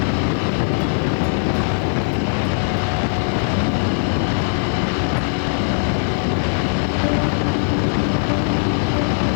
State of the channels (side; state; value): right; silent; digital silence